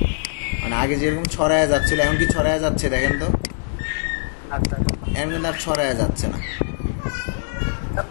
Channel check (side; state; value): right; silent; digital silence